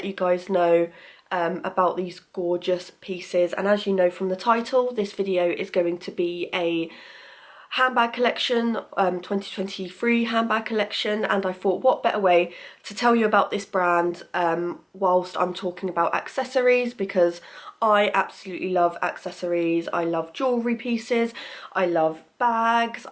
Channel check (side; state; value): both; identical; correlation 1.00